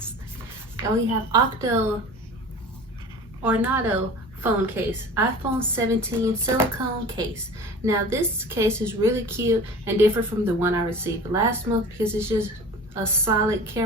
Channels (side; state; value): both; normal; correlation 0.39